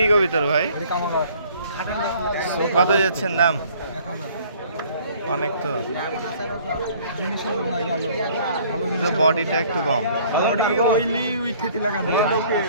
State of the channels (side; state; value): both; inverted; correlation -0.56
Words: কবিতর ভাই? কত যাচ্ছেন দাম? অনেক তো, বডিটা একটু কম।